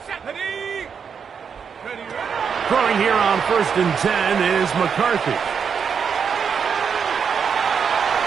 Throwing here on 1st and 10 is McCarthy.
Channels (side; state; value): left; quieter; 6.7 dB